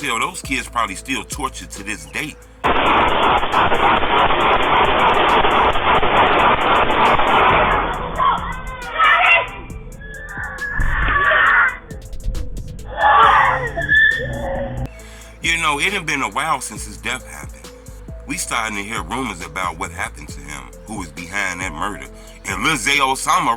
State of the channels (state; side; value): identical; both; correlation 1.00